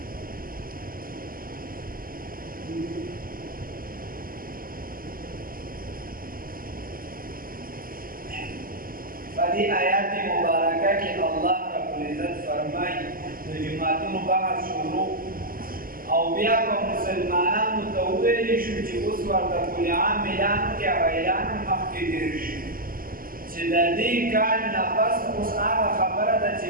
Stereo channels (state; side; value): late; left; 0.42 ms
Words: فدي آيات مباركة کې الله رب العزت فرمایي د جماعتونو بحث شروع او بیا په مسلمانانو ته وویل شو چې اوس ورته کل عام اعلان کې اعلان مخکې تېر شي چې د دې کال نه پس اوس هغه خبره ده چې